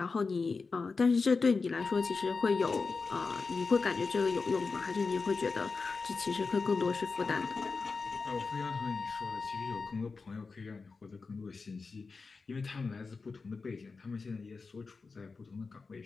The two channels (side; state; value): right; quieter; 4.4 dB